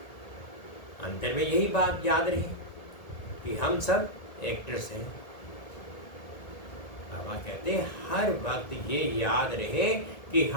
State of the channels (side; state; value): right; late; 1.8 ms